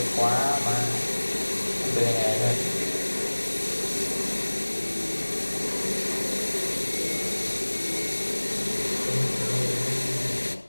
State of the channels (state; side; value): inverted; both; correlation -1.00